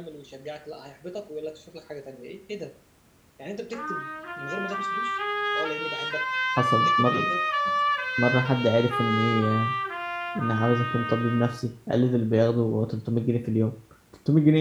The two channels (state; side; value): identical; both; correlation 1.00